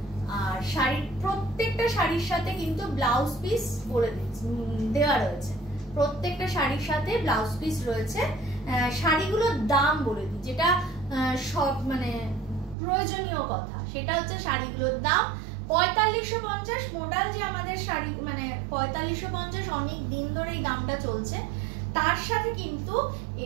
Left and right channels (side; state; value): left; drops out; at 12.8 s